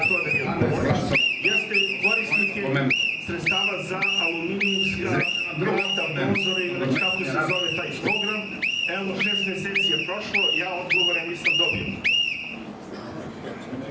to da mi odgovoriš, jeste korisnike sredstava za aluminijumska vrata, prozore ili već kako se zove taj program. Evo, 6 meseci je prošlo, ja odgovore nisam dobio.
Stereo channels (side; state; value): both; identical; correlation 1.00